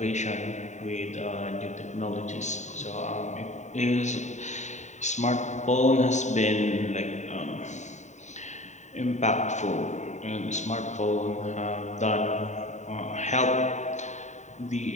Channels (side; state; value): right; late; 0.34 ms